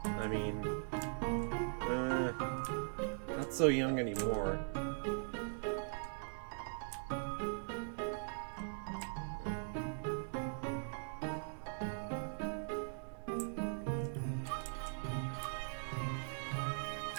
I mean... not so young anymore.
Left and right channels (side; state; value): left; silent; digital silence